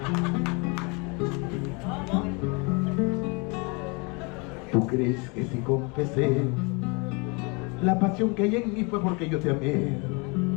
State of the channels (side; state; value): right; quieter; 30.7 dB